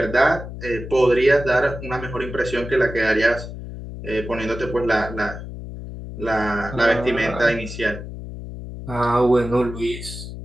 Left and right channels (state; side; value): noise; left; hum, 10 dB below the sound